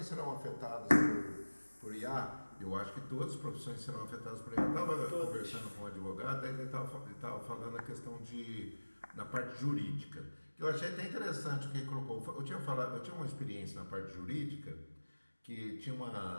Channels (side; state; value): both; inverted; correlation -1.00